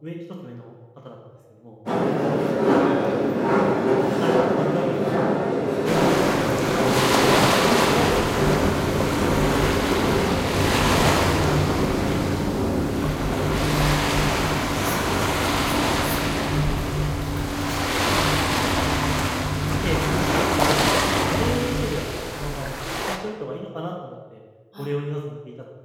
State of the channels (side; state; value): both; identical; correlation 1.00